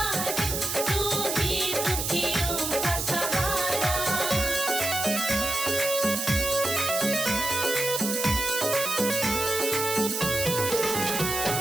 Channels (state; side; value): noise; right; hiss, 2 dB below the sound